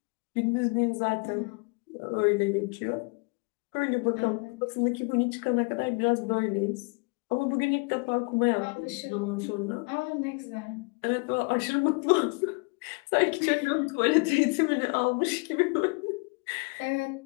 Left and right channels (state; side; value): quieter; right; 31.9 dB